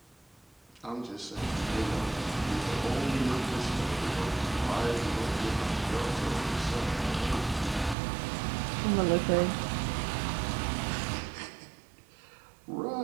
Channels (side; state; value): left; drops out; at 8.0 s